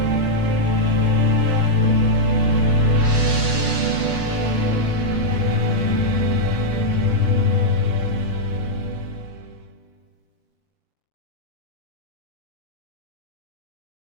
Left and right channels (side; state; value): right; late; 6.3 ms